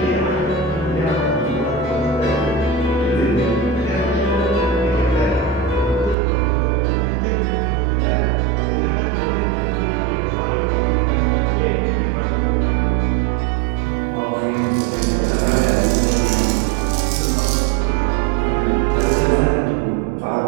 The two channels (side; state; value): left; drops out; at 6.2 s